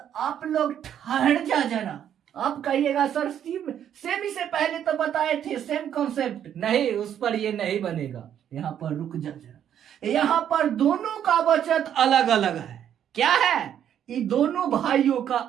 आप लोग ठहर जा जरा, आप कहिएगा सर सेमी से पहले तो बताए थे सेम कॉन्सेप्ट, नहीं उस पर ये नहीं बनेगा, यहां पर रुक जा जरा, यहां पर दोनों का बचत अलग अलग है, क्या है, ये दोनों भाइयों का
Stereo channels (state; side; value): quieter; left; 9.7 dB